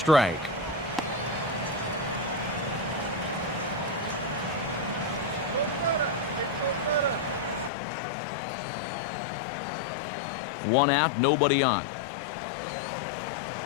One out, nobody on.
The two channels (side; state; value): right; drops out; at 7.7 s